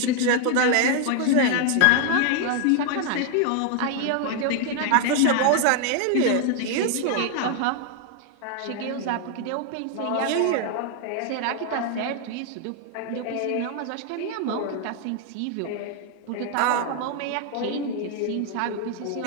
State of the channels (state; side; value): different; both; correlation 0.00